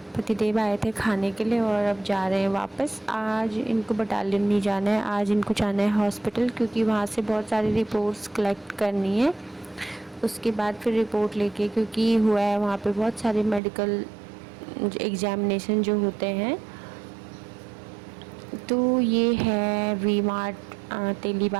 पतिदेव आए थे खाने के लिए और अब जा रहे हैं वापस। आज इनको बटालियन नहीं जाना है, आज इनको जाना है हॉस्पिटल, क्योंकि वहाँ से बहुत सारी रिपोर्ट्स कलेक्ट करनी है। उसके बाद फिर रिपोर्ट लेके, क्योंकि हुआ है वहाँ पे बहुत सारे मेडिकल एग्ज़ामिनेशन जो होते हैं। तो ये है वी मार्ट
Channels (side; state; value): left; drops out; at 13.6 s